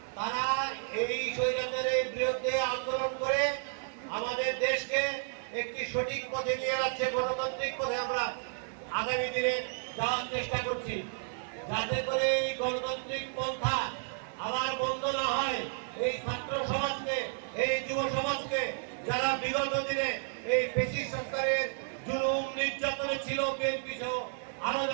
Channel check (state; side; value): silent; left; 56 dB below the other